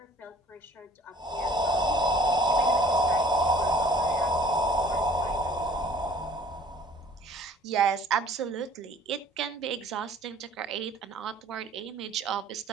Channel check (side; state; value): both; normal; correlation 0.52